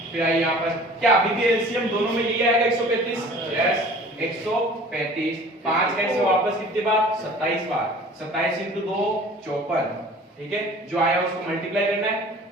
फिर आइए यहाँ पर क्या अभी भी एलसीएम दोनों में यही आएगा 135, यस 135, 5 का इसमें वापस कितनी बार 27 बार, 27 इंटू 2 54, ठीक है जो आया उसको मल्टीप्लाई करना है,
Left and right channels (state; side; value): normal; both; correlation 0.46